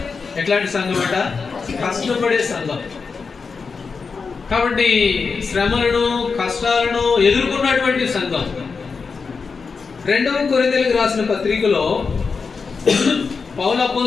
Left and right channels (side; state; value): right; quieter; 5.0 dB